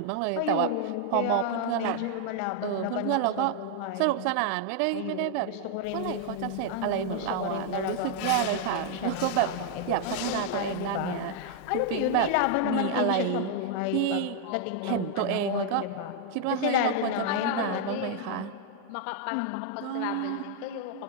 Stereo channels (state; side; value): different; both; correlation 0.00